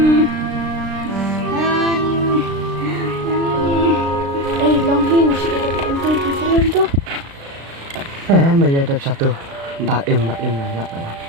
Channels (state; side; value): late; left; 36 ms